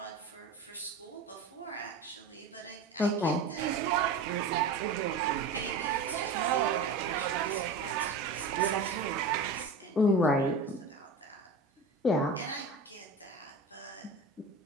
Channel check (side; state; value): left; quieter; 3.3 dB